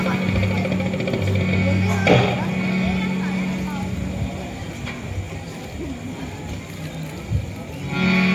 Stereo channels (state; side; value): identical; both; correlation 1.00